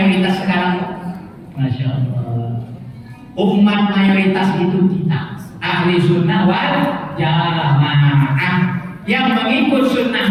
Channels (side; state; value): both; identical; correlation 1.00